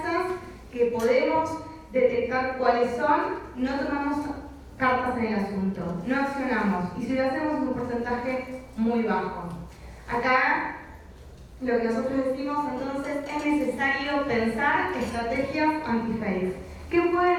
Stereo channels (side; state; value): both; identical; correlation 1.00